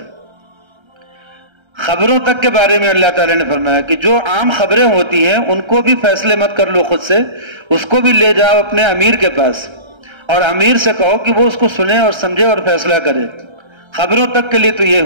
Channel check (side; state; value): left; late; 1.3 ms